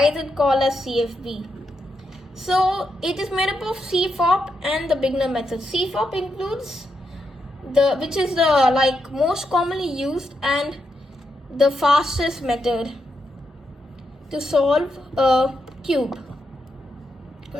is it called as CFB. So it is made up of CFOP and the beginner method. CFOP includes which is the most commonly used and the fastest method to solve a cube.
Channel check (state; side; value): normal; both; correlation 0.83